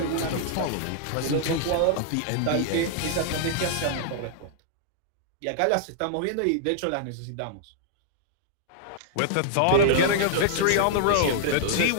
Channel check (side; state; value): both; different; correlation -0.01